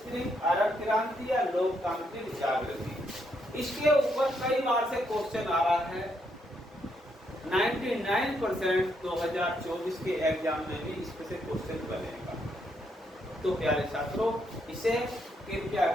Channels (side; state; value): both; normal; correlation 0.76